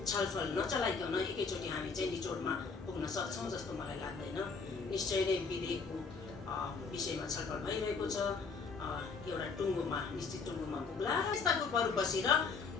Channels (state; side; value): quieter; right; 4.9 dB